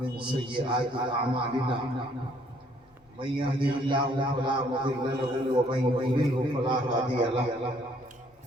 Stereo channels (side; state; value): both; normal; correlation 0.64